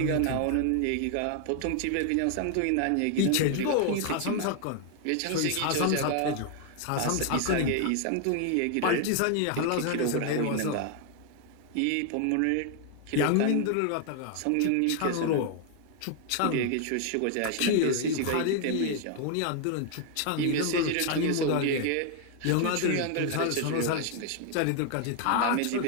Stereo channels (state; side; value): different; both; correlation 0.00